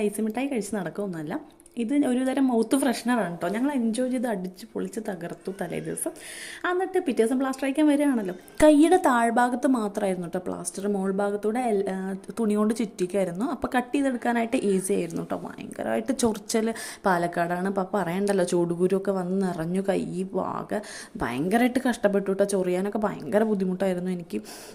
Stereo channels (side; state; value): both; identical; correlation 1.00